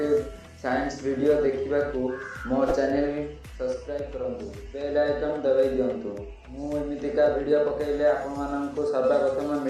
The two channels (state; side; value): identical; both; correlation 1.00